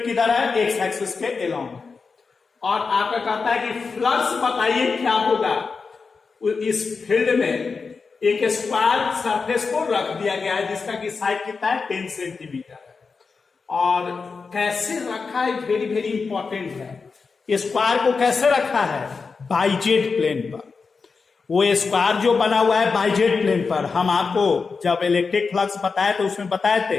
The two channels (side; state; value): right; quieter; 4.8 dB